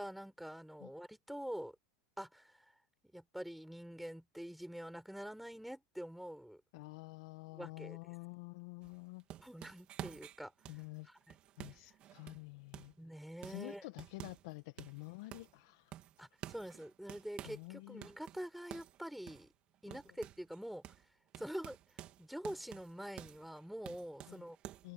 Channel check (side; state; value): both; normal; correlation 0.73